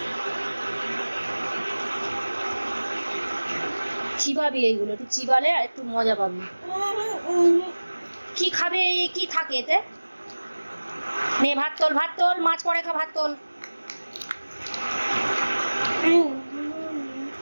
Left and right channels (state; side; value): inverted; both; correlation -1.00